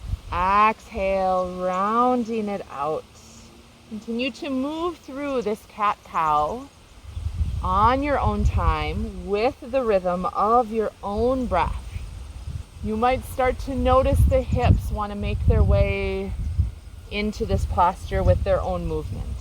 Exhale, rounding it out. Continue to move through this cat-cow on your own time with the rhythm of your own breath. You might start to notice the hips want to make their way into this posture with their own movement.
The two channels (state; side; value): identical; both; correlation 1.00